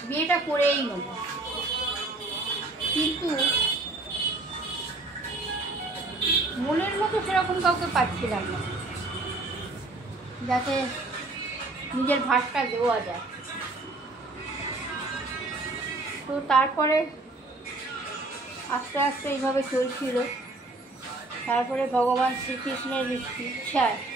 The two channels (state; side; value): quieter; left; 3.0 dB